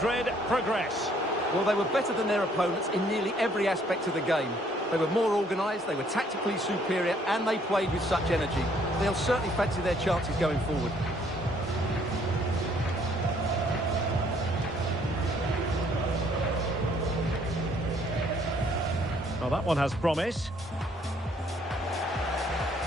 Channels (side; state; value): both; normal; correlation 0.64